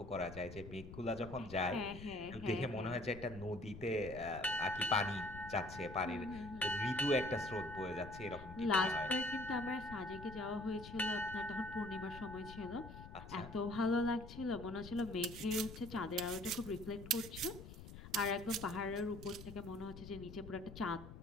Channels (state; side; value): noise; left; rumble, 13 dB below the sound